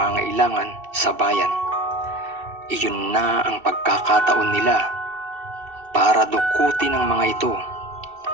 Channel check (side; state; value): left; late; 2.7 ms